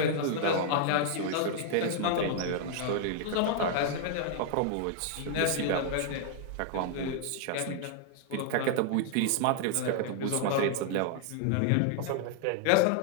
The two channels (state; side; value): different; both; correlation 0.00